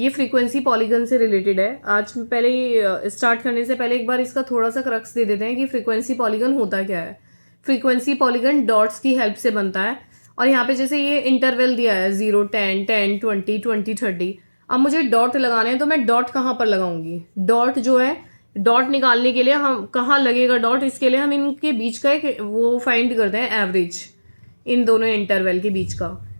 फ्रीक्वेंसी पॉलीगन से रिलेटेड है। आज पहले स्टार्ट करने से पहले एक बार इसका थोड़ा सा क्रक्स दे देते हैं कि फ्रीक्वेंसी पॉलीगन होता क्या है। फ्रीक्वेंसी पॉलीगन डॉट्स की हेल्प से बनता है और यहाँ पे जैसे ये इंटरवल दिया है 0, 10, 10, 20, 20, 30। अब मुझे डॉट लगाने हैं तो मैं डॉट कहाँ पर लगाऊंगी? डॉट जो है, डॉट निकालने के लिए हम कहाँ लगेगा डॉट, इसके लिए हम इनके बीच का एक वो फाइंड करते हैं एवरेज, इन दोनों इंटरवल के बीच का,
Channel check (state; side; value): inverted; both; correlation -1.00